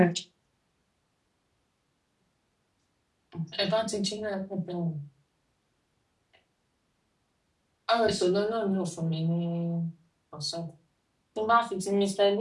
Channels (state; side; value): identical; both; correlation 1.00